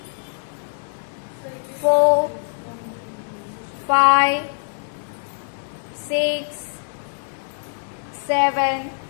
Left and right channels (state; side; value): silent; right; 63 dB below the other